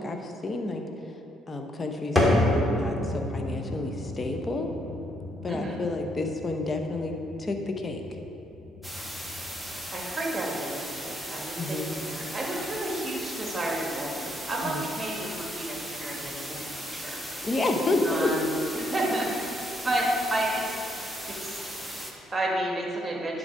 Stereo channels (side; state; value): both; normal; correlation 0.74